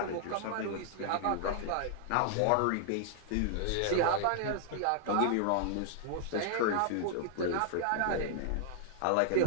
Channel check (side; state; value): both; different; correlation -0.01